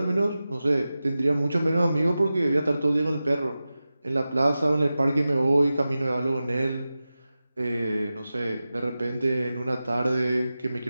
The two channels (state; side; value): inverted; both; correlation -0.94